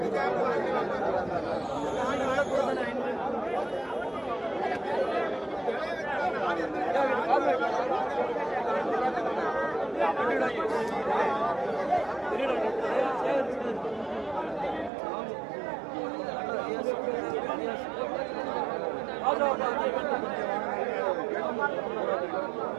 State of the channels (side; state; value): left; drops out; at 14.9 s